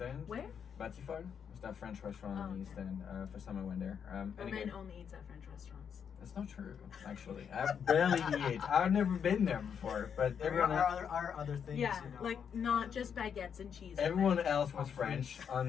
End. Where? Batsy Fall. It's that French restaurant Oh, on the okay. East End. First time I went there. And Omen again, only eats at French restaurants. that's not true. Actually, I barely eat. I've never been there before, but everyone. Our other things, Yeah, you know. like not just baguettes and cheese. Everyone else was French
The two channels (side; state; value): right; quieter; 7.5 dB